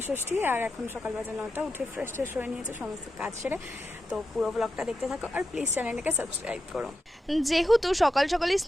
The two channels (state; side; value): normal; both; correlation 0.88